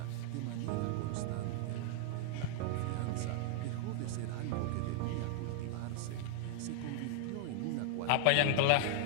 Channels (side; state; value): both; different; correlation 0.00